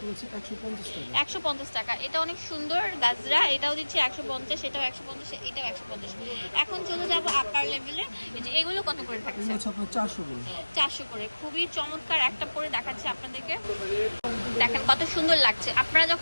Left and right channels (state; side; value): inverted; both; correlation -1.00